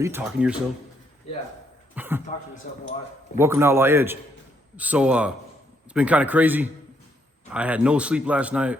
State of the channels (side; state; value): both; normal; correlation 0.73